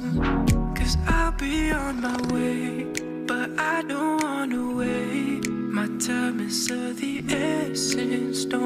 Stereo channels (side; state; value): both; identical; correlation 1.00